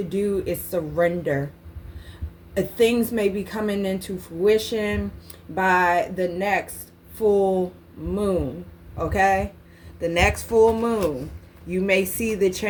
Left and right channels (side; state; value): both; identical; correlation 1.00